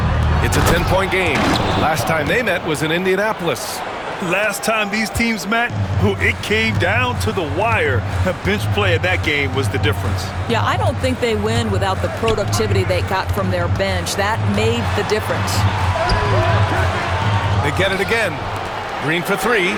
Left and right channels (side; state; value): both; identical; correlation 1.00